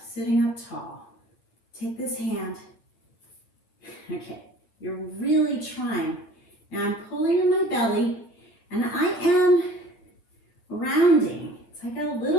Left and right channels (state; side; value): late; right; 9.0 ms